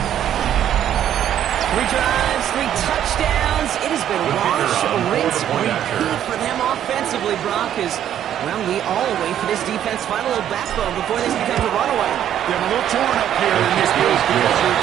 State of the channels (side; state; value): left; quieter; 10.6 dB